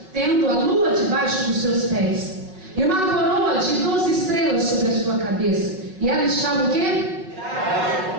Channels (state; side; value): late; left; 5.3 ms